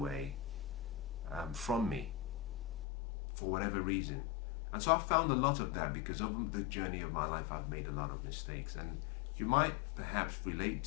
from me for whatever reason. And so I've found a lot of that because over the journey of my life, I've made a lot of mistakes. And you might perhaps relate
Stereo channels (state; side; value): drops out; right; at 2.9 s